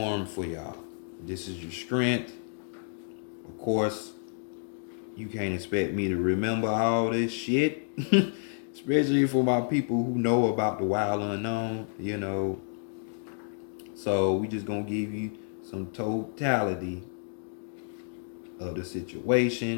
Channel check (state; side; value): silent; right; digital silence